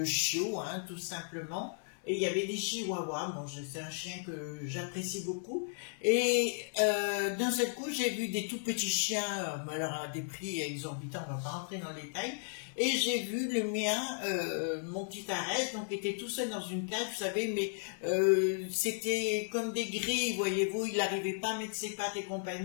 chiots, hein, tout simplement. Et il y avait des chihuahuas, bon, c'est un chien que j'apprécie beaucoup. Et d'un seul coup, j'ai vu des tout petits chiens, alors à des prix exorbitants, on va pas rentrer dans les détails. Et j'ai vu le mien, mon petit Arès, donc était tout seul dans une cage, vous savez, mais c'était comme des grilles, voyez-vous, il n'arrivait pas à mettre ses pattes et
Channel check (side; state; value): right; silent; 55 dB below the other